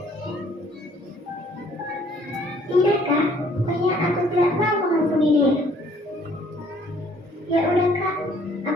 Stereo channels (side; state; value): both; normal; correlation 0.60